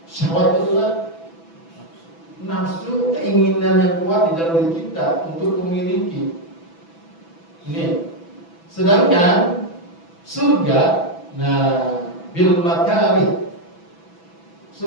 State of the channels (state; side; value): late; right; 6.0 ms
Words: Syahwat itu adalah nafsu, keinginan yang kuat di dalam diri kita untuk memiliki. Ini. Sedangkan surga, nah, bil makarih.